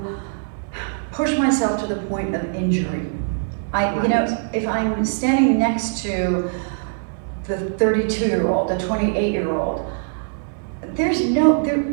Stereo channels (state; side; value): silent; left; 58 dB below the other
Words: push myself to the point of injury. You know, if I'm standing next to the 32-year-old, the 28-year-old, there's